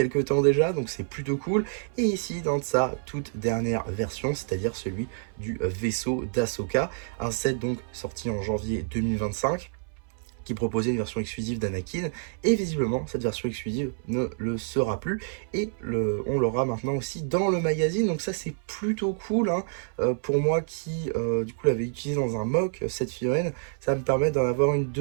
temps déjà, donc c'est plutôt cool. Et ici, dans sa toute dernière version, c'est-à-dire celui du vaisseau d'Ahsoka, un set donc sorti en janvier 2025, qui proposait une version exclusive d'Anakin, et visiblement cette version exclusive ne le sera plus, et on l'aura maintenant aussi dans le magazine, donc ça c'est plutôt cool, hein. Pour moi qui du coup l'avais utilisé dans un mock, cette figurine, ça me permet d'en avoir une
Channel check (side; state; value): left; silent; 60 dB below the other